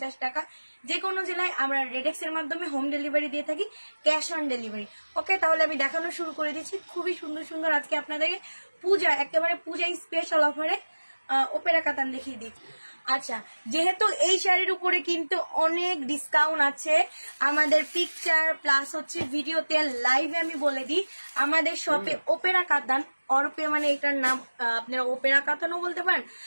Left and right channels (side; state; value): both; inverted; correlation -1.00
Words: টাকা। যে কোনো জেলায় আমরা রেডেক্স এর মাধ্যমে হোম ডেলিভারি দিয়ে থাকি, ক্যাশ অন ডেলিভারি। ওকে, তাহলে আমি দেখানো শুরু করে দিচ্ছি। খুবই সুন্দর সুন্দর আজকে আপনাদেরকে পূজা, একেবারে পূজা স্পেশাল অফারে ওপেরা কাতান দেখিয়ে দিই। আচ্ছা, যেহেতু এই শাড়ির উপরে কিন্তু অনেক ডিসকাউন্ট আছে, আমাদের পিকচার প্লাস হচ্ছে ভিডিওতে লাইভে আমি বলে দিই, আমাদের শপে ওপেরা কাতান অরপে, মানে এটার নাম আপনারা ওপেরা কাতানও বলতে পারেন,